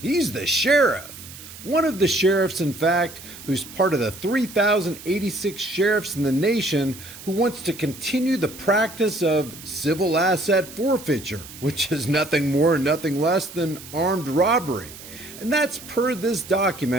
the sheriff. One of the sheriffs, in fact, who's part of the 3,086 sheriffs in the nation who wants to continue the practice of civil asset forfeiture, which is nothing more and nothing less than armed robbery. And that's per this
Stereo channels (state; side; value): noise; right; hiss, 16 dB below the sound